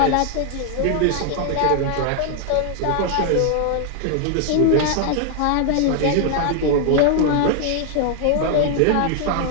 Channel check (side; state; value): both; different; correlation 0.00